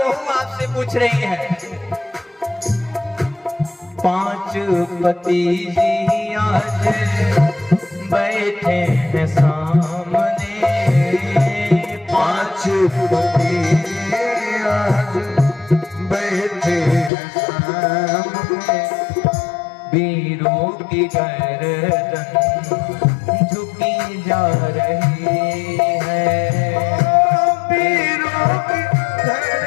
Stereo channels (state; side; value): drops out; right; at 17.1 s